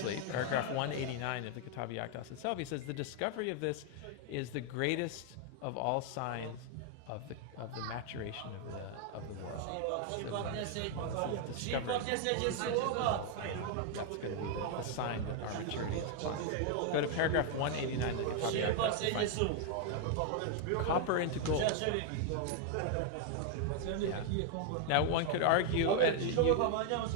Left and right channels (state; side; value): different; both; correlation 0.00